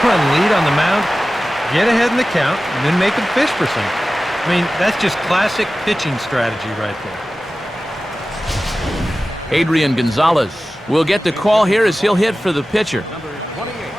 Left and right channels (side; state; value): both; normal; correlation 0.95